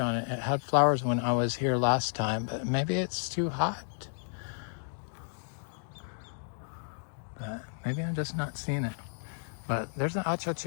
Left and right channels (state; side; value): silent; right; digital silence